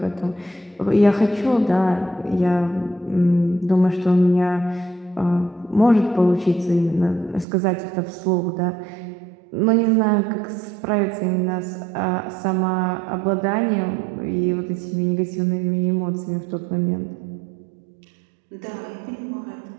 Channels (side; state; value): left; drops out; at 7.5 s